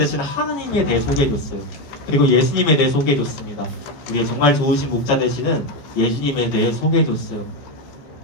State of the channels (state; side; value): late; right; 14 ms